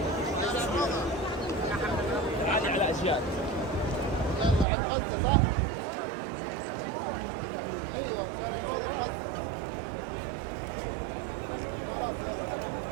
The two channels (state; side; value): drops out; left; at 4.7 s